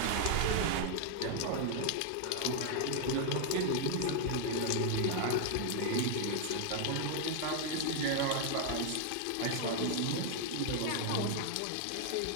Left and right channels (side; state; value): both; different; correlation 0.00